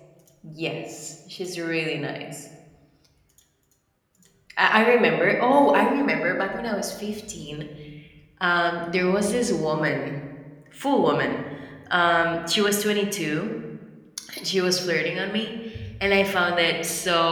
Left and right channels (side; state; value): both; identical; correlation 1.00